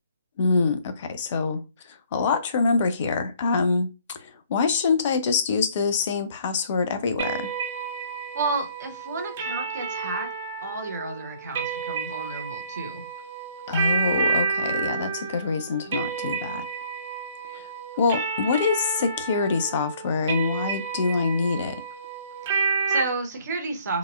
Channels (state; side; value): inverted; both; correlation -0.60